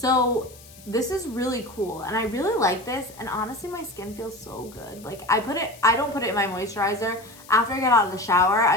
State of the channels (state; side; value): noise; left; hiss, 21 dB below the sound